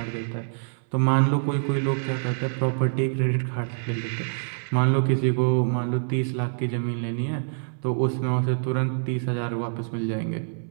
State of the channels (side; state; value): left; silent; 60 dB below the other